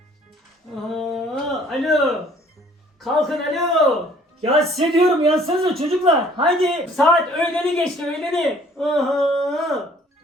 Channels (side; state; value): both; normal; correlation 0.57